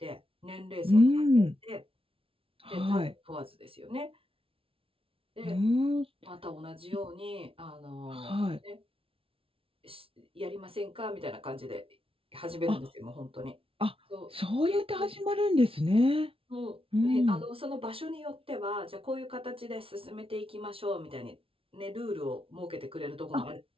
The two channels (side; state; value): left; late; 0.26 ms